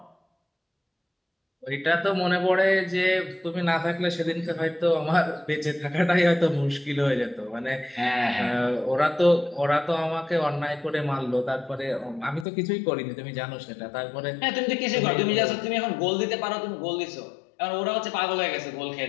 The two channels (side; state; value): right; drops out; at 12.5 s